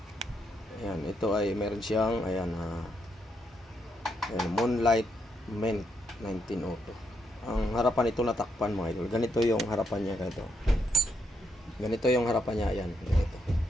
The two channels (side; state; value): both; normal; correlation 0.79